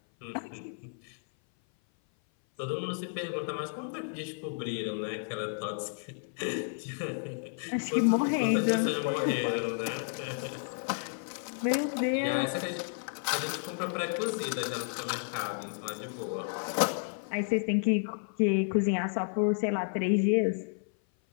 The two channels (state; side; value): silent; right; 56 dB below the other